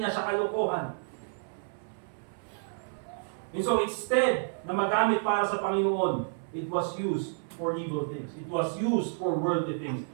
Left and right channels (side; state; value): left; silent; 58 dB below the other